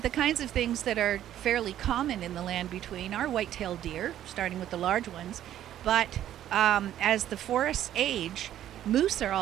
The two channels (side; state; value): left; quieter; 11.7 dB